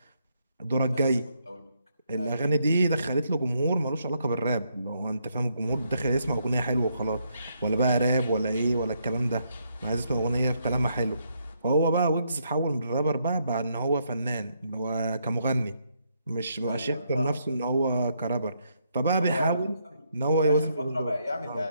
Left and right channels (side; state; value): both; inverted; correlation -0.75